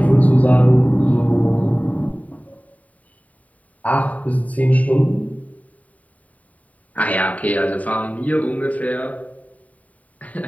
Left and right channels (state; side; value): late; right; 0.070 ms